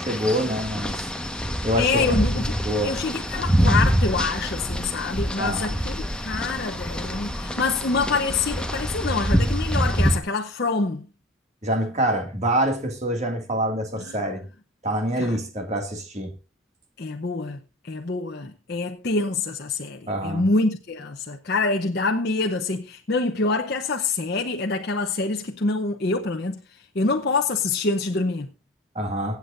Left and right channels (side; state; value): both; normal; correlation 0.46